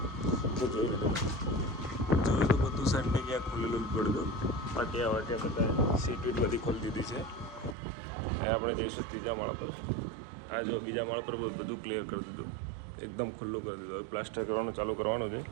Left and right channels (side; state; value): left; drops out; at 7.8 s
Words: તો જોઈ લીધું. જોયું તો બધું સેન્ટિંગ ક્યાં ખોલેલું જ પડ્યું. પાટિયા વાટિયા બધા સીટ વીટ બધી ખોલી દીધી છે. એ આપણે જઈશું 3જા માળ પર. આ જો 2જા માળ પર બધું ક્લિયર કરી દીધું, એકદમ ખુલ્લું કરી દીધું. હવે પ્લાસ્ટર કરવાનું ચાલુ કરવાનું છે.